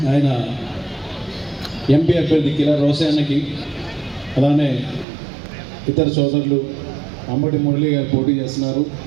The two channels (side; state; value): left; drops out; at 5.1 s